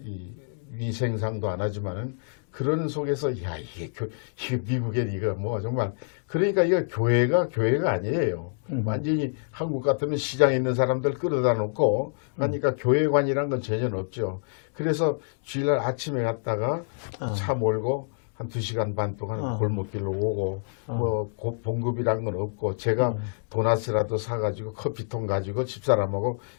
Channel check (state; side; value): silent; right; digital silence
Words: 이 위생상도 안 하지만은 그런 속에서 야 이게 미국에 이거 뭐 정말 그러니까 이거 교회가 아니에요. 완전히 한국 같으면 시장에 있는 사람들 끌어다 놓고 그러니까 교회관이란 건 전혀 없죠. 그래서 주일날 아침에 갔다가 차 몰고 한 2시간 반 동안 골목길로 오고 뭐 봉급이란 건 없고 제가 도넛이라도 사가지고 커피통 가지고 집사람하고